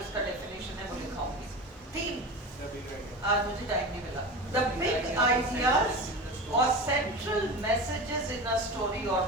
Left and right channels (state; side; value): normal; both; correlation 0.28